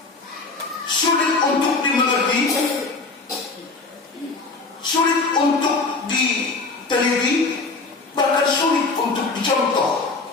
sulit untuk dimengerti, sulit untuk diteliti, bahkan sulit untuk dicontoh.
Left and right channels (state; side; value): quieter; right; 3.8 dB